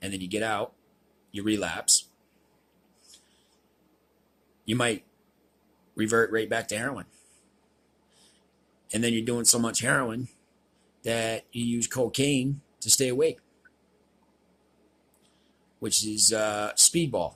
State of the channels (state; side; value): identical; both; correlation 1.00